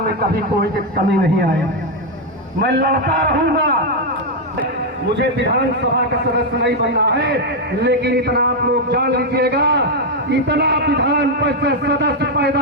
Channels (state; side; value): normal; both; correlation 0.02